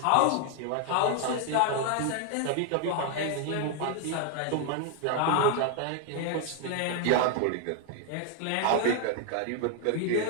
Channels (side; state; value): both; different; correlation 0.00